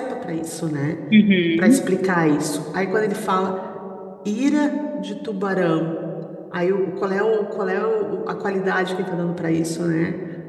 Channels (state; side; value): identical; both; correlation 1.00